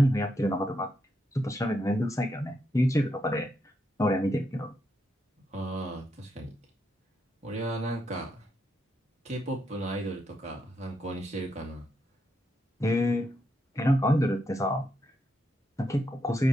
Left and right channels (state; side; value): normal; both; correlation 0.81